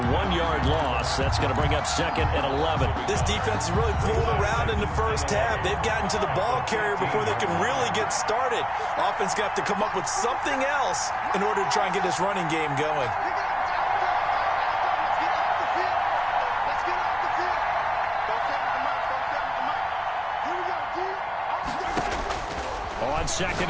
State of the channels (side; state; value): both; identical; correlation 1.00